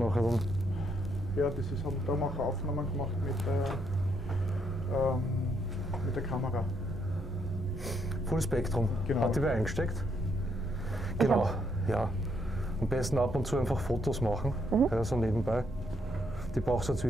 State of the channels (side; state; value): both; normal; correlation 0.74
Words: dann. Ja, das ist, da haben wir auch Aufnahmen gemacht mit der Kamera. Full Spektrum. Genau. Hat die wer eingesteckt? Genau, ja. Am besten ab und zu einfach Fotos machen, ja, so nebenbei. Die brauchst du